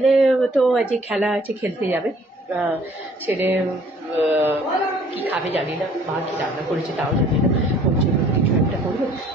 তো আজকে খেলা আছে, খেলতে যাবে। ছেলে কী খাবে জানি না, মা কী রান্না করেছে তাও জানি না। ওর জন্য কিছু একটা করবে,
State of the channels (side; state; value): both; normal; correlation 0.57